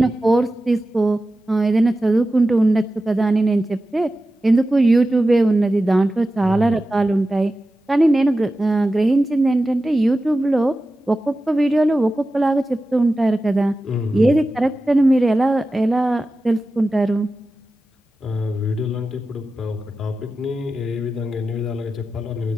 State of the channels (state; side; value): normal; both; correlation 0.94